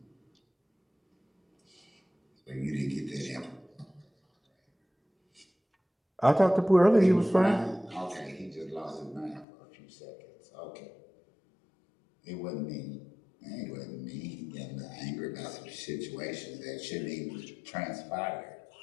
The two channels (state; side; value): drops out; right; at 9.5 s